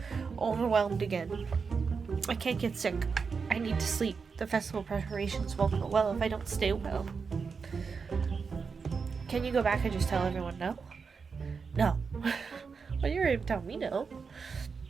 overwhelmed again. I can't get sick. I need to sleep. The festival preparations won't go well if I don't stay well. Can you go back and just tell everyone no? No. Well, you're going to tell me no.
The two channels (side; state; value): left; quieter; 5.3 dB